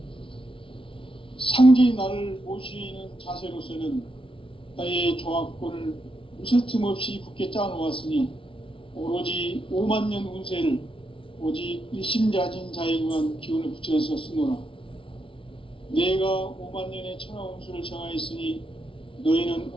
상제인 나를 모시는 자세로서는 나의 조화권을 무쇠틈 없이 굳게 짜놓았으니 오로지 5만년 운세를 오직 일심자진 자에게만 기운을 붙여서 쓰노라. 내가 5만년의 천하 운수를 정하였으니 너희는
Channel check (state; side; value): late; right; 0.25 ms